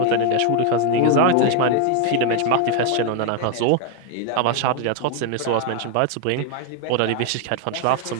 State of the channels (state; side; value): different; both; correlation 0.01